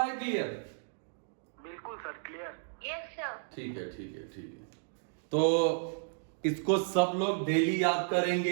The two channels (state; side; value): silent; left; digital silence